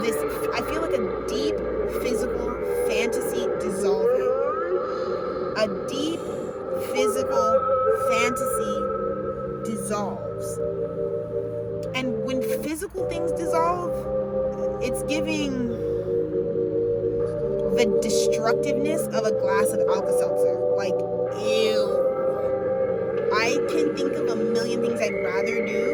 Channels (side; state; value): both; identical; correlation 1.00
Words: this, I feel like a deep physical fantasy dissolving. A deep physical fantasy dissolves. And when physical things dissolve, it's giving the destructiveness of a glass of Alka-Seltzer. Like, ew. I can think of a million things I'd rather